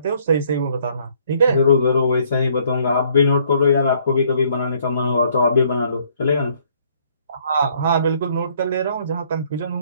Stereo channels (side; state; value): both; inverted; correlation -0.64